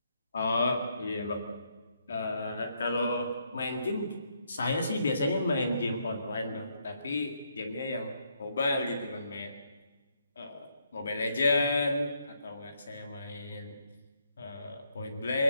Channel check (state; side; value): inverted; both; correlation -0.75